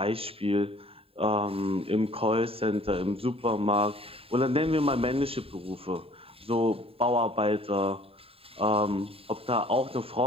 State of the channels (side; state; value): left; late; 0.27 ms